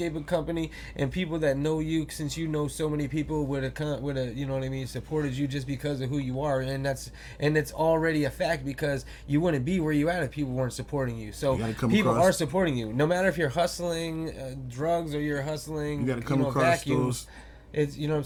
company, and people that know you, since you know so many people would have, you know what I mean, supported you just because of who you are, and it's already a fact because you wouldn't be where you at if people weren't supporting you. So people are supporting you, no matter if you're hustling drugs or you're hustling, you gotta come across vacuums. It's, you know what I'm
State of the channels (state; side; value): identical; both; correlation 1.00